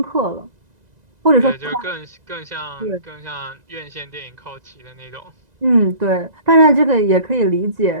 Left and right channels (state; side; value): late; left; 2.0 ms